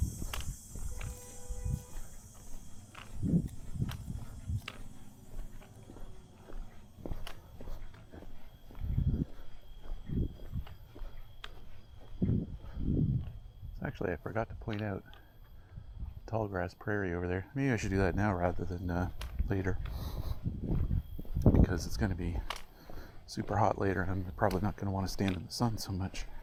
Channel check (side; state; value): both; identical; correlation 1.00